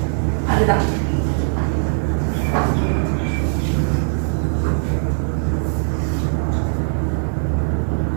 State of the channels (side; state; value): left; silent; digital silence